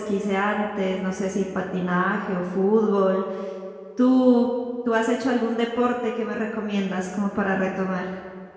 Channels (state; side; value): identical; both; correlation 1.00